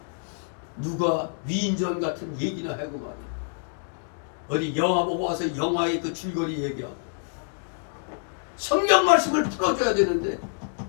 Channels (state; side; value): silent; right; digital silence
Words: 누가 위인전 같은 얘기나 하고 말이야. 어디 영화 보고 와서 영화의 그 줄거리 얘기하고 성경 말씀을 풀어줘야 되는데